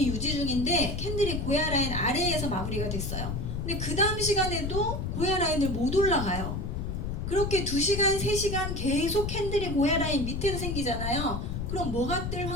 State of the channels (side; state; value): left; noise; rumble, 3 dB below the sound